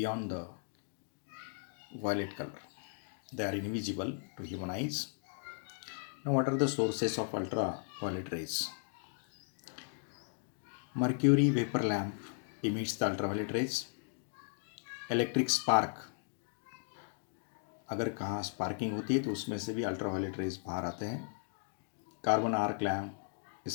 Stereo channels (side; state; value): right; silent; digital silence